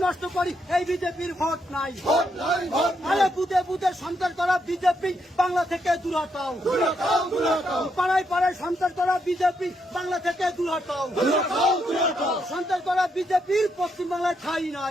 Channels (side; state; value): both; normal; correlation 0.78